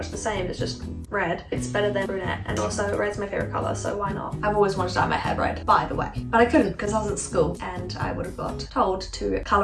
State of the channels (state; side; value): identical; both; correlation 1.00